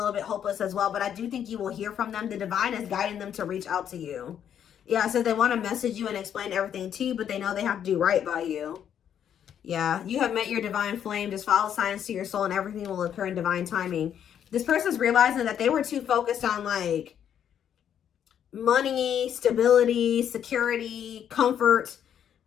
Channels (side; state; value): right; quieter; 9.2 dB